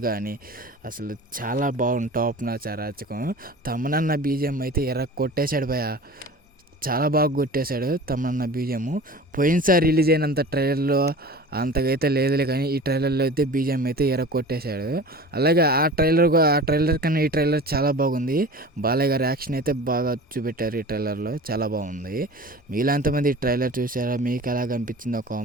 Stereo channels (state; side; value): normal; both; correlation 0.38